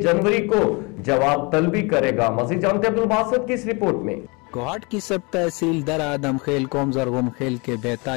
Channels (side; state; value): right; quieter; 28.9 dB